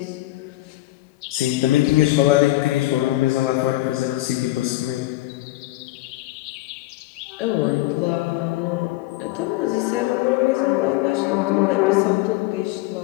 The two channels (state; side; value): quieter; right; 17.5 dB